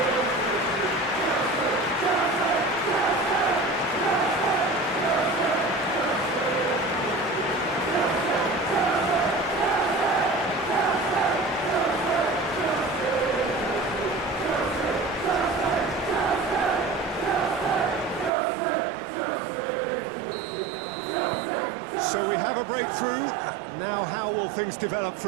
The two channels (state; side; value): drops out; left; at 18.3 s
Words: So we have a breakthrough. Now how will things develop